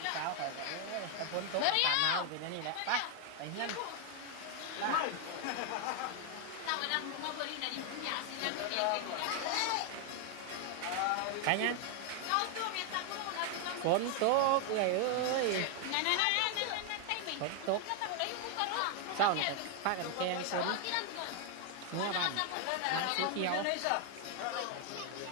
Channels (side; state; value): both; different; correlation 0.01